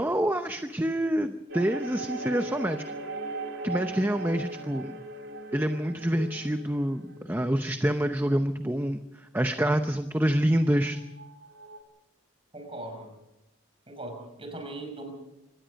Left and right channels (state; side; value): normal; both; correlation 0.85